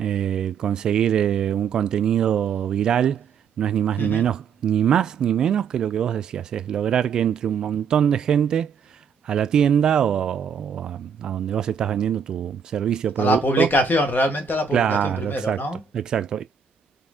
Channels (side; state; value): left; quieter; 6.6 dB